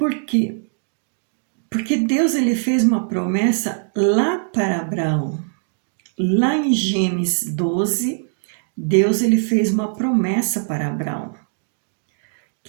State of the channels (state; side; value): silent; left; digital silence